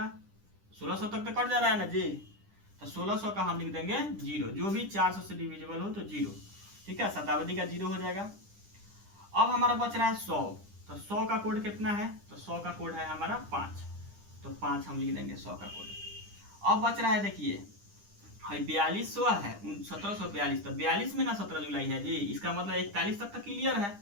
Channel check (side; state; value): left; late; 9.9 ms